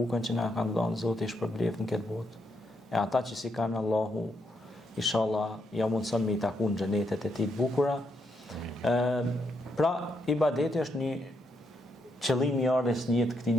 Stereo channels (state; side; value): normal; both; correlation 0.78